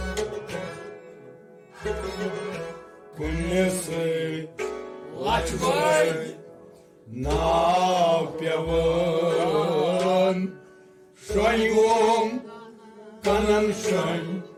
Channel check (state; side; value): identical; both; correlation 1.00